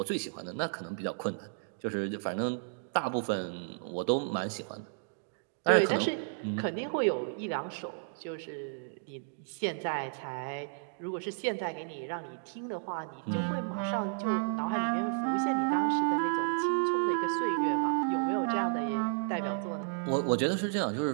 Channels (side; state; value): left; silent; digital silence